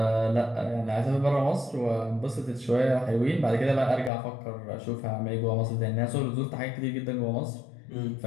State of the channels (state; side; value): drops out; right; at 4.1 s